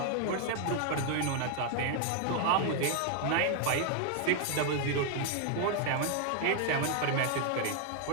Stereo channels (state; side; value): different; both; correlation 0.00